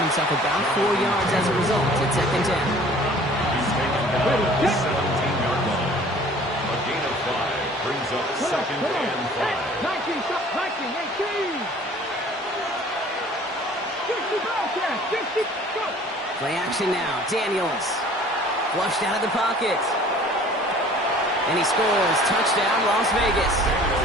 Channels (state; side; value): normal; both; correlation 0.50